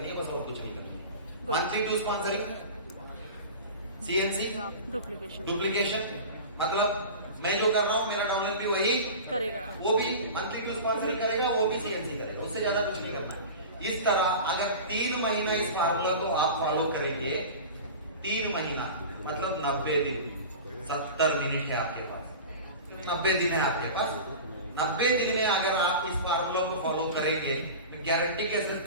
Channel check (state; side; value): inverted; both; correlation -0.33